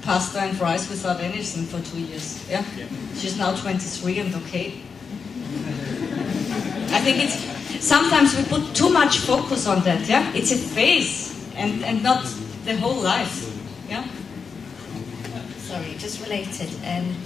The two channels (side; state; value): right; quieter; 5.7 dB